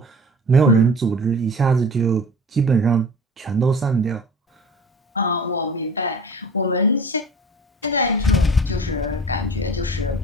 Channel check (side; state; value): both; normal; correlation 0.41